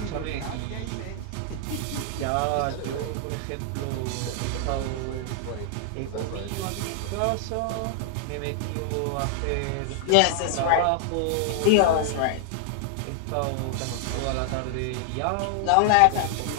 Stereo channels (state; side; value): different; both; correlation 0.00